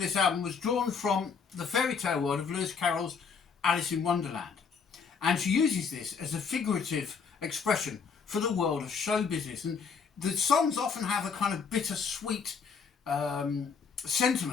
album was drawn from the fairy tale world of Lewis Carroll's Alice in Wonderland. And she uses this as a figurative expression for the world of show business. And the songs often have a kind of bittersweet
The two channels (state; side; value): quieter; right; 5.8 dB